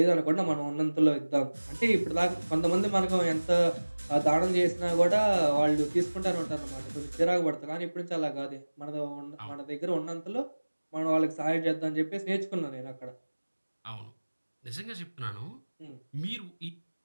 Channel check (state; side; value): inverted; both; correlation -1.00